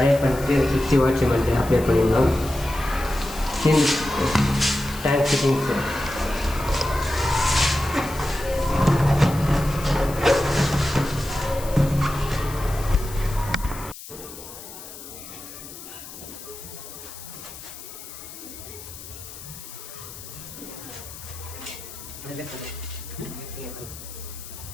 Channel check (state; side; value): noise; left; hiss, 14 dB below the sound